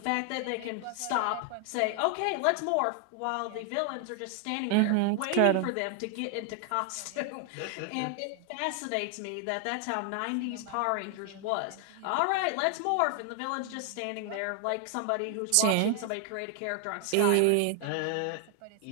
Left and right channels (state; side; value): different; both; correlation 0.00